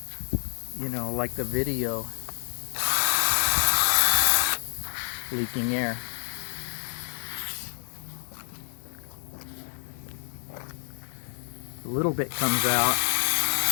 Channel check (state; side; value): silent; right; digital silence